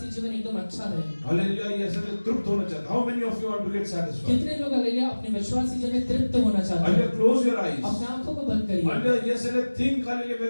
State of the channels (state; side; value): inverted; both; correlation -1.00